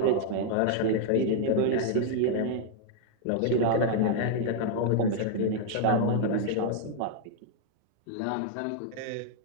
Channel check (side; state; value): both; different; correlation 0.00